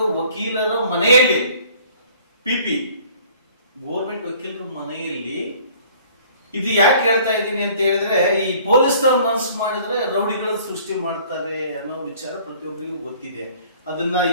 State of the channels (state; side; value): inverted; both; correlation -0.54